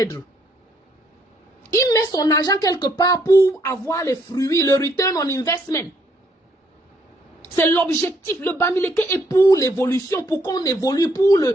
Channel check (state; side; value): normal; both; correlation 0.70